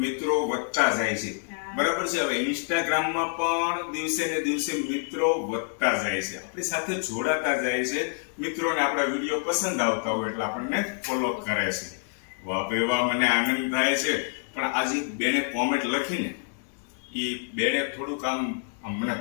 મિત્રો વધતા જાય છે, બરાબર છે. હવે ઇન્સ્ટાગ્રામમાં પણ દિવસે ને દિવસે મિત્રો વધતા જાય છે, આપણી સાથે જોડાતા જાય છે. મિત્રોને આપણા વિડીયો પસંદ આવતા હોય એટલે આપણને ફોલો કરે છે. વાહ ભાઈ વાહ, મને આનંદ થાય છે. પણ આજે બેને કોમેન્ટ લખીને એ બેને થોડુંક આમ મને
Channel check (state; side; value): silent; right; 60 dB below the other